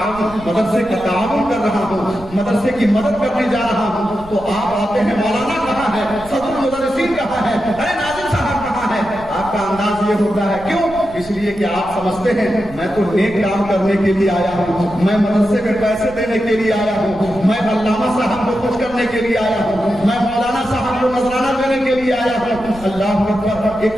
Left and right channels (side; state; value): right; noise; rumble, 18 dB below the sound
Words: کر رہا ہوں، مدرسے کی مدد کرنے جا رہا ہوں، تو آپ آتے ہیں مولانا کہاں ہے، صدر المدرسین کہاں ہے، ارے ناظم صاحب کہاں ہے؟ آپ کا انداز یہ ہوتا ہے، کیوں؟ اس لیے کہ آپ سمجھتے ہیں میں تو نیک کام کرنے کے لیے آیا ہوں، میں مدرسے میں پیسے دینے کے لیے آیا ہوں، میں علامہ صاحب کو خوش کرنے کے لیے آیا ہوں، میں مولانا صاحب کو نذرانہ دینے کے لیے آیا ہوں۔ اللہ اکبر،